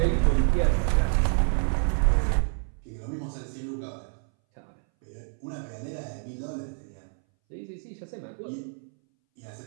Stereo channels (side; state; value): left; silent; 59 dB below the other